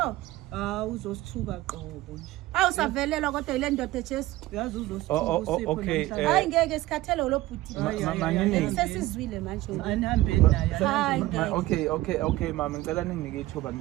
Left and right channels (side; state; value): left; quieter; 17.2 dB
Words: Uzosithuka qobo nje. Awusavelelwa kodwa ile ndoda eJesu Uyazi uzosithuka uSipho namhlanje. hayi ngeke sikhathele lo bhuti Manini sesizwile manje anihambeni naye. hayi Okay mama ngicela ninginike ithuba